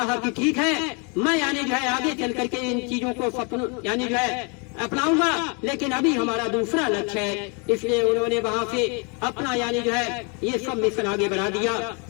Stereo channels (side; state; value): right; quieter; 33.9 dB